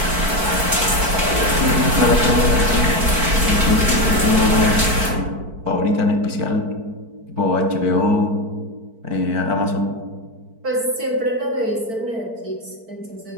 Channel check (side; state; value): left; late; 4.5 ms